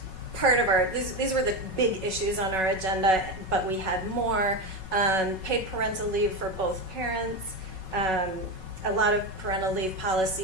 part of our, these were the big issues on our agenda, but we had more. Paid parental leave for both parents. A lot of parental leave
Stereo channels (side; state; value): left; late; 5.3 ms